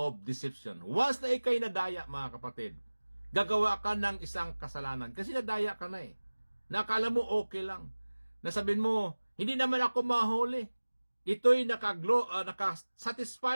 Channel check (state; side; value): inverted; both; correlation -1.00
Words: deception. Once na ikay nadaya, mga kapatid, gagawa ka ng isang kasalanan. Kasi nadaya ka na Nakala mo okay lang. Nasabihin mo, hindi naman ako mahuli. Ito'y